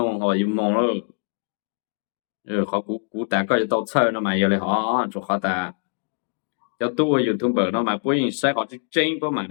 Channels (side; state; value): right; silent; 63 dB below the other